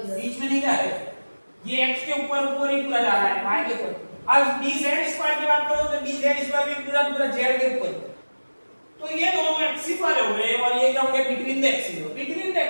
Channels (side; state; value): both; inverted; correlation -1.00